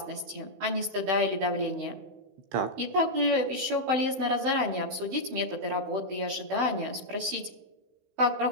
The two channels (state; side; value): late; left; 16 ms